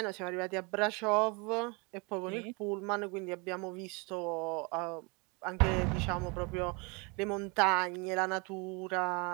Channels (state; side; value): quieter; left; 29.8 dB